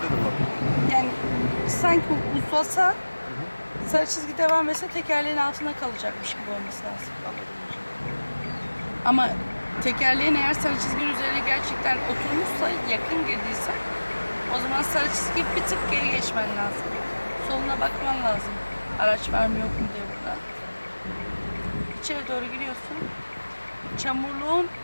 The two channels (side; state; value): both; inverted; correlation -1.00